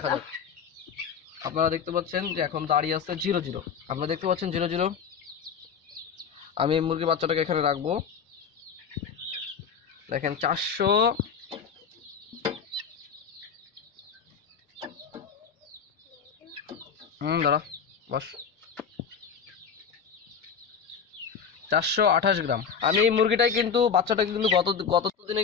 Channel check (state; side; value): quieter; right; 6.6 dB